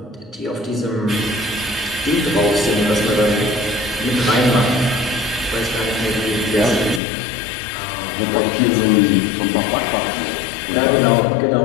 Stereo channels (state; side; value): drops out; right; at 7.0 s